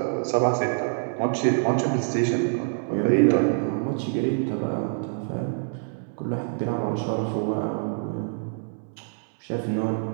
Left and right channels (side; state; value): left; silent; digital silence